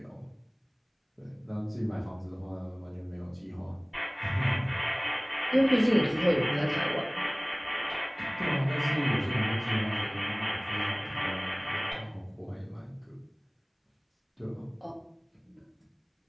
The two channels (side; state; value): both; identical; correlation 1.00